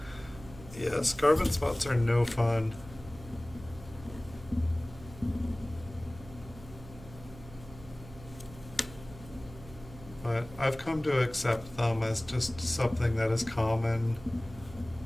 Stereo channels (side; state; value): right; noise; hum, 17 dB below the sound